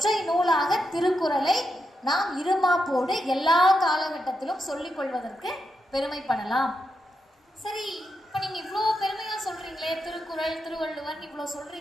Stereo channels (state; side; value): normal; both; correlation 0.85